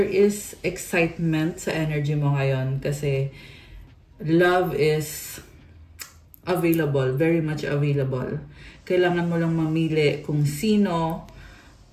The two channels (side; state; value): both; identical; correlation 1.00